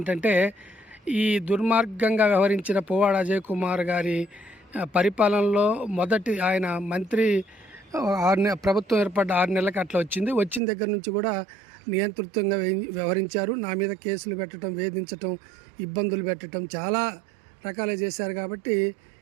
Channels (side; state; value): left; drops out; at 10.6 s